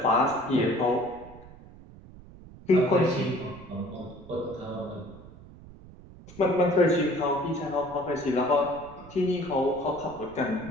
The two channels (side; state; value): right; noise; rumble, 19 dB below the sound